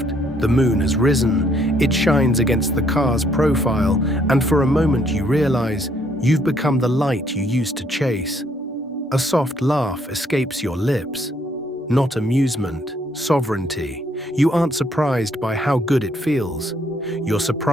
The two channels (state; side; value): normal; both; correlation 0.68